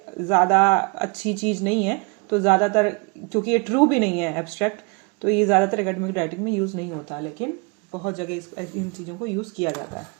ज्यादा अच्छी चीज नहीं है, तो ज्यादातर क्योंकि ये ट्रू भी नहीं है एब्स्ट्रैक्ट, तो ये ज्यादातर एकेडमिक राइटिंग में यूज नहीं होता, लेकिन बहुत जगह इन चीजों को यूज किया जाता है।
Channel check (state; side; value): quieter; left; 31.9 dB